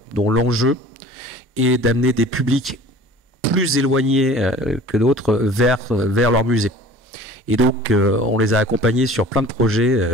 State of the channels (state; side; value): normal; both; correlation 0.44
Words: dont l'enjeu est d'amener des publics plus éloignés que d'autres vers leur musée. Et donc, on les a accompagnés sur plein de